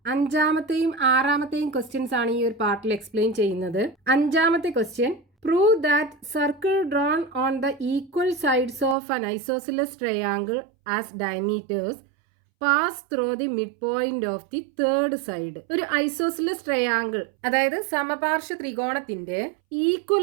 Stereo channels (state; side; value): drops out; left; at 9.0 s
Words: അഞ്ചാമത്തെയും ആറാമത്തെയും questions ആണ് ഈ ഒരു പാർട്ടിൽ എക്സ്പ്ലെയിൻ ചെയ്യുന്നത്. അഞ്ചാമത്തെ question, prove that circle drone on the equal sides of an isosceles triangle as diameters pass through the mid point of the third side. ഒരു isosceles triangle, അതായത് സമപാർശ്വ ത്രികോണത്തിന്റെ